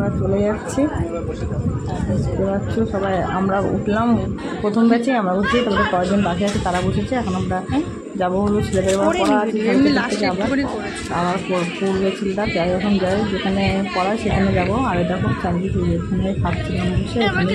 চলে যাচ্ছি। বুঝতে পারছো সবাই, আমরা উঠলাম প্রথম ব্যাচে, আমরা উঠছি, তারপরে কয়েকজন বাকি আছে তারা বসেছে। এখন আমরা যাবো হলো ছেলেদের পড়া আছে, আমার পূর্বে ছেলেটা যাই এখন যাই যেখানে পড়ায় সেখানে যাবো। আর এটা খুব চান্দি এখানে খাচ্ছিলাম বসে,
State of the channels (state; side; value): identical; both; correlation 1.00